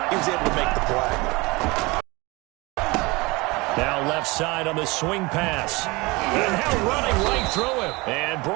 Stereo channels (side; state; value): left; quieter; 24.2 dB